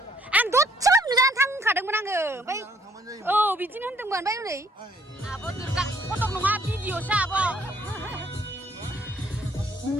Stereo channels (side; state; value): both; normal; correlation 0.65